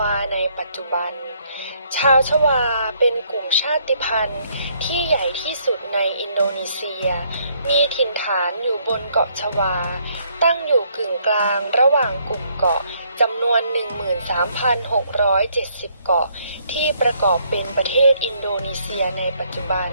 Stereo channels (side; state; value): both; inverted; correlation -0.68